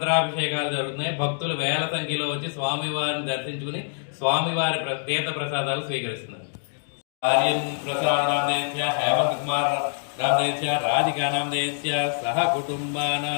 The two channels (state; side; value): silent; right; digital silence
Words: జరుగుతున్నాయి. భక్తులు వేల సంఖ్యలో వచ్చి స్వామివారిని దర్శించుకుని స్వామివారి తీర్థ ప్రసాదాలు స్వీకరిస్తున్నారు. आर्यन प्रसाद नामदेस्य हेमंत कुमार नामदेस्य राधिका नामदेस्य सह